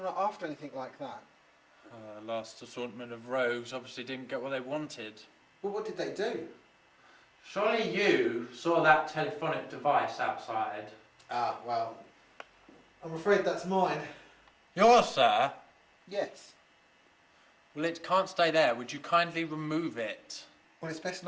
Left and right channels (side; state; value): both; identical; correlation 1.00